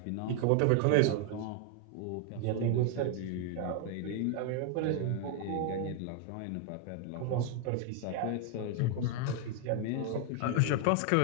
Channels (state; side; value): different; both; correlation 0.00